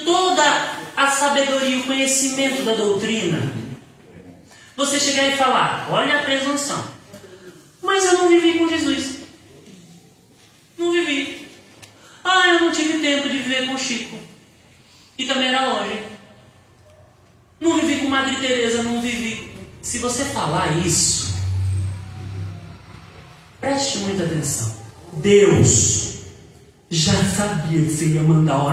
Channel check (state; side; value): identical; both; correlation 1.00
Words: toda a sabedoria e o conhecimento da doutrina, você chegar e falar, olha a presunção, mas eu não vivi com Jesus, não vivi. Ah, eu não tive tempo de viver com Chico, e também era longe. Não vivi com Madre Teresa, não vivi. Se você falar isso, preste muita atenção. Deus já sabia que você ia mandar